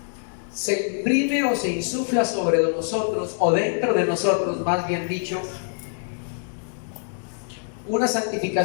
se imprime o se insufla sobre nosotros, o dentro de nosotros, más bien dicho, una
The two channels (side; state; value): right; silent; digital silence